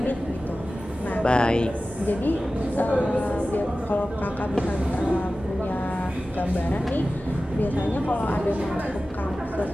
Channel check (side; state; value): both; normal; correlation 0.95